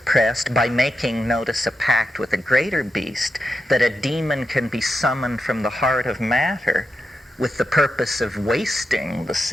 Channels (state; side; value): normal; both; correlation 0.88